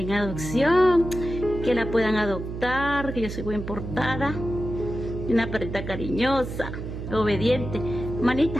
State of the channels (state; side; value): noise; right; hum, 7 dB below the sound